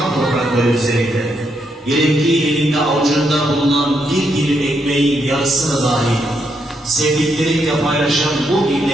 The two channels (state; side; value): normal; both; correlation 0.79